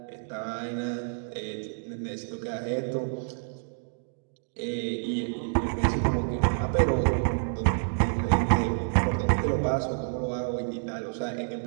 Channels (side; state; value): left; silent; digital silence